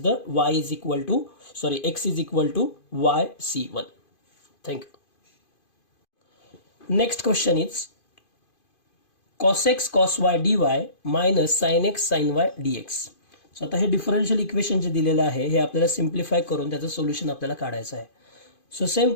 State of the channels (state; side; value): late; right; 2.5 ms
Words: the x is equal to y C1. Thank you. Next question is cos x cos y dy minus sin x sin y dx. So आता हे डिफरन्शियल इक्वेशन जे दिलेलं आहे हे आपल्याला simplify करून त्याचं solution आपल्याला काढायचं आहे. So same